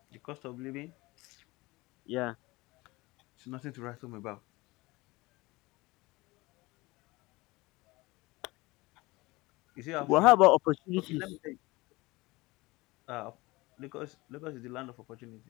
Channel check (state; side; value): quieter; right; 22.0 dB